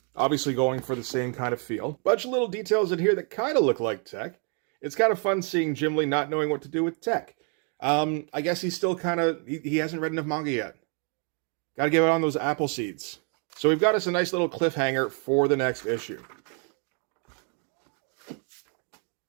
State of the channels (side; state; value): left; quieter; 39.3 dB